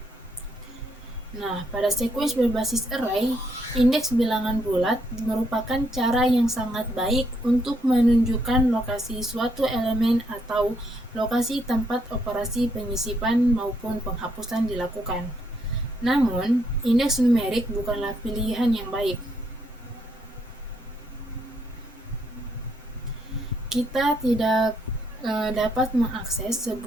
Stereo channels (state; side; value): normal; both; correlation 0.74